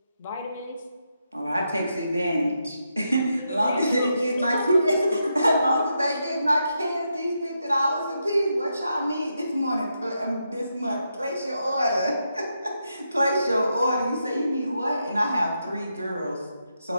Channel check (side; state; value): both; inverted; correlation -0.83